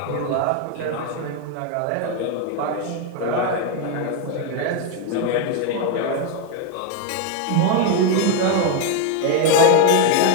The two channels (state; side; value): different; both; correlation 0.01